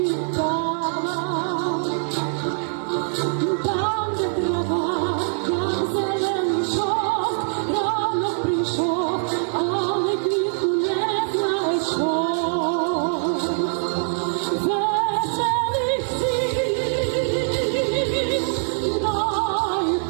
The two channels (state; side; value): silent; left; 58 dB below the other